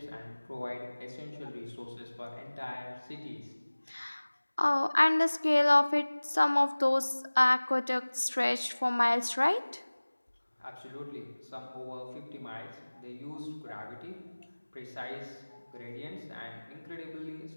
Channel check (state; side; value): inverted; both; correlation -1.00